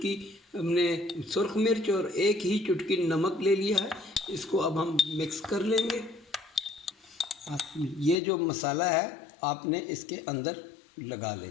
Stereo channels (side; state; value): right; drops out; at 8.2 s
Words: हमने सुर्ख मिर्च और 1 ही चुटकी नमक ले लिया है। इसको अब हम मिक्स कर लेंगे। ये जो मसाला है आपने इसके अंदर लगा